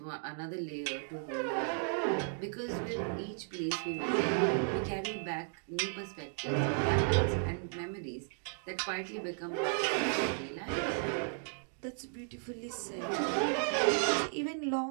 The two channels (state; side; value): silent; left; 55 dB below the other